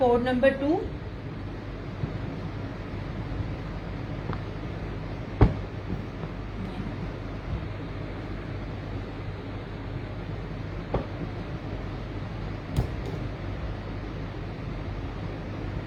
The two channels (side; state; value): both; identical; correlation 1.00